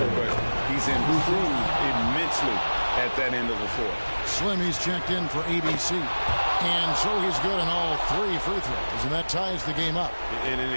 but he's improved immensely at that end of the floor. Slimmy's checked in for ABC. And so he's good on all 3 free throws, and that ties the game up. And an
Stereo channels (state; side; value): inverted; both; correlation -1.00